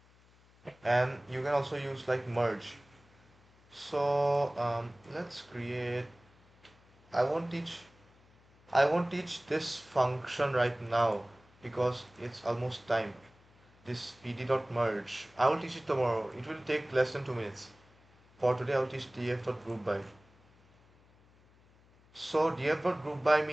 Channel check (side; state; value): left; noise; hum, 29 dB below the sound